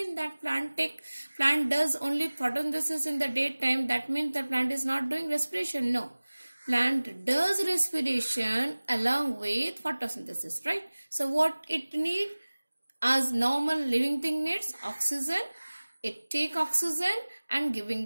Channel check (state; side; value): inverted; both; correlation -1.00